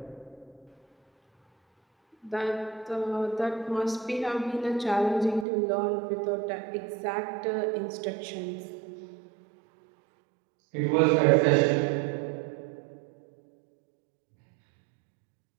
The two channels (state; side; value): drops out; left; at 5.5 s